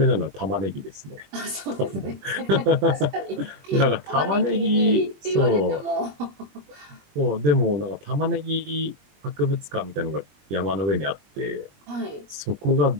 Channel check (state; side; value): late; left; 21 ms